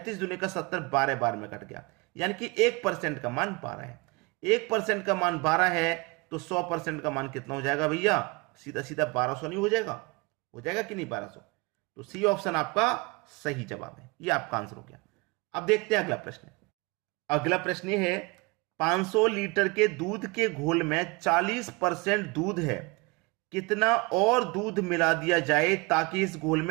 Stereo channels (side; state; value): left; quieter; 26.8 dB